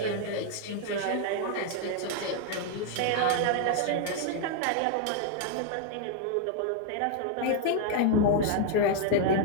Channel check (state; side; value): different; both; correlation 0.00